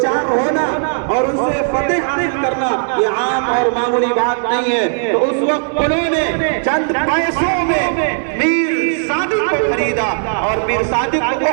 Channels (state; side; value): silent; left; digital silence